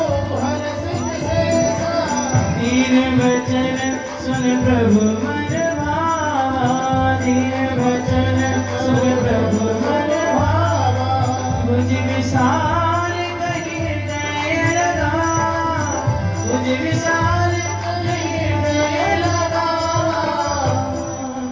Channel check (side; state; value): both; identical; correlation 1.00